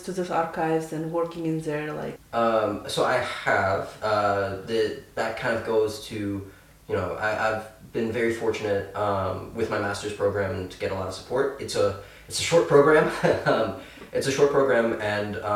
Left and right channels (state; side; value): identical; both; correlation 1.00